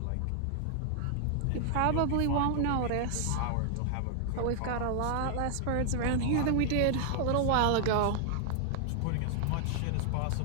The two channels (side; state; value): both; different; correlation 0.00